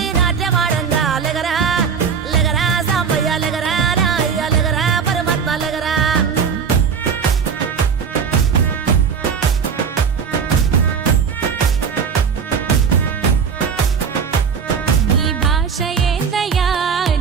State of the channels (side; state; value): left; quieter; 6.6 dB